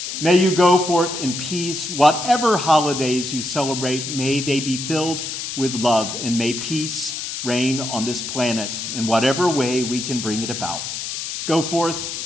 May you go forth in peace. Whatever holidays you celebrate, may they be filled with love, and may peace reign on this planet in whatever way we can bring it about. Go forth,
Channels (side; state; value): left; noise; hiss, 5 dB below the sound